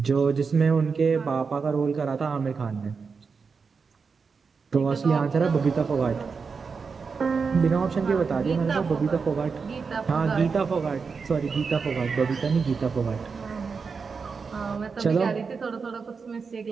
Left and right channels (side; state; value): left; quieter; 5.2 dB